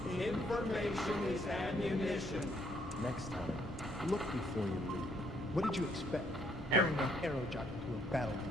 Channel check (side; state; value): both; normal; correlation 0.68